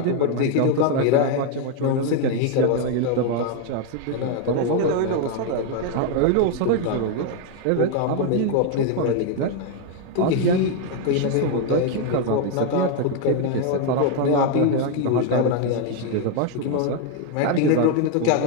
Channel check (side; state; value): both; different; correlation 0.01